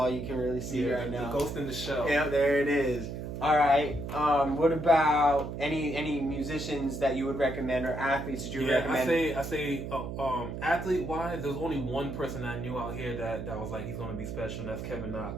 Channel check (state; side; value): noise; right; hum, 6 dB below the sound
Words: you can really see right now. The ghost in the shell. Yeah, there it is. All right. What about any musicians that you would recommend or athletes that you would recommend? I say, athlete wise, there's only one person I knew out here that was like he's gonna be special, and that's Kevin